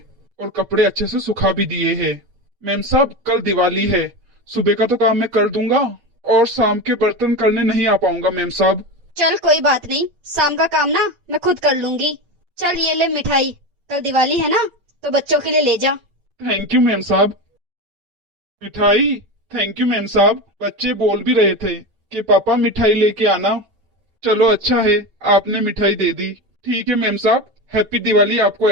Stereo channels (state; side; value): late; left; 8.7 ms